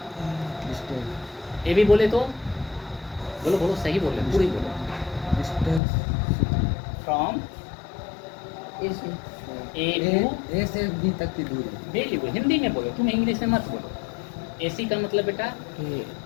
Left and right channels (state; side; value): drops out; right; at 5.8 s